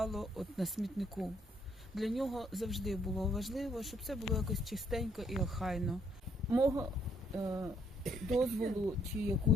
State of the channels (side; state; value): both; normal; correlation 0.69